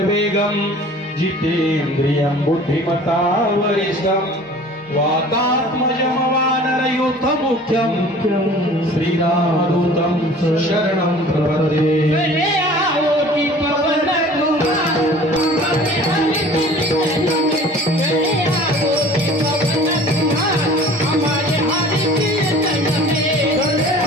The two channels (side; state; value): both; normal; correlation 0.46